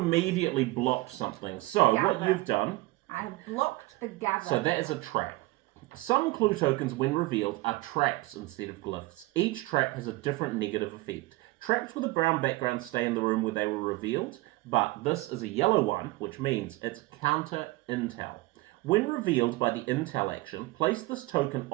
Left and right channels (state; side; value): quieter; left; 20.7 dB